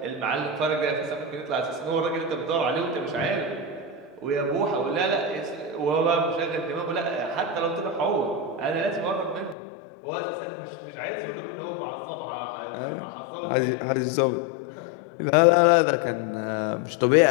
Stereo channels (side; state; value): right; drops out; at 9.6 s